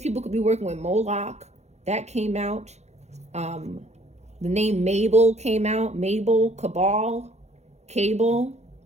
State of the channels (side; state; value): left; late; 0.32 ms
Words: people could be working with Moloch. That came out. The name Mabel came out. Mabel, Cabal, Cable,